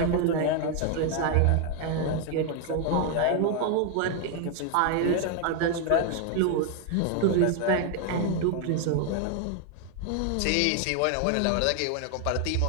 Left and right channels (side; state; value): both; different; correlation 0.00